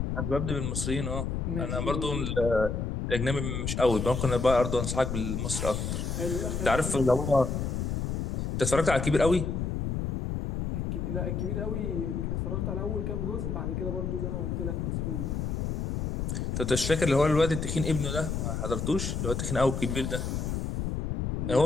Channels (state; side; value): noise; left; rumble, 1 dB below the sound